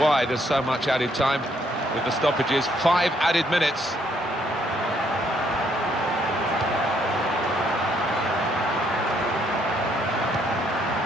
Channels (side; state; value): both; normal; correlation 0.70